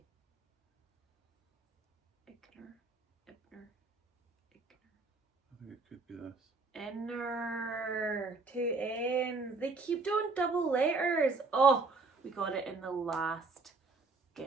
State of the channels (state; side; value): quieter; left; 3.9 dB